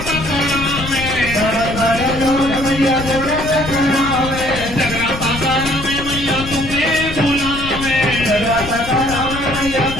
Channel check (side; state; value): left; noise; rumble, 9 dB below the sound